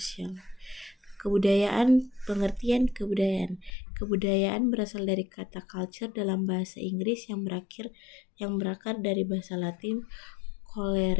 Kebudayaan, pengertian kebudayaan. Kebudayaan berasal dari kata culture dalam bahasa Inggris yang berakar dari bahasa Latin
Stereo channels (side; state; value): right; drops out; at 3.7 s